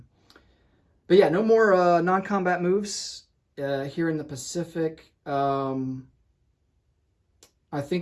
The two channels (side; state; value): both; identical; correlation 1.00